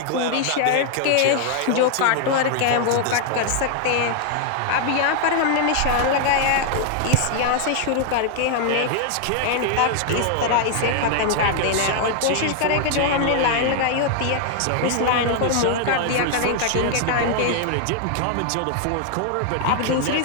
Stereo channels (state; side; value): different; both; correlation 0.00